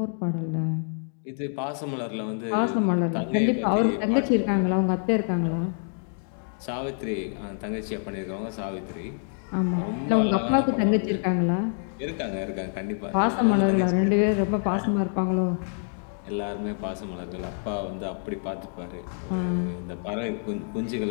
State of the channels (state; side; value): silent; right; 60 dB below the other